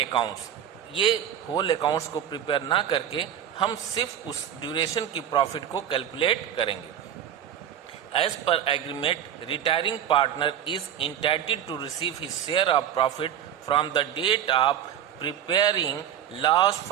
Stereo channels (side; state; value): left; quieter; 10.0 dB